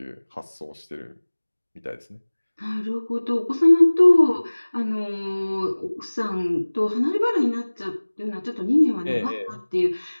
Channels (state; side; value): inverted; both; correlation -1.00